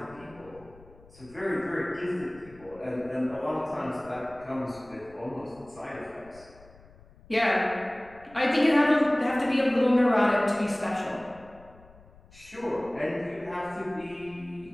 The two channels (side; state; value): left; noise; rumble, 24 dB below the sound